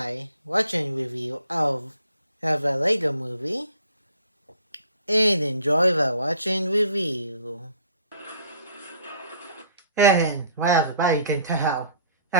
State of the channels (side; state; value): both; inverted; correlation -0.55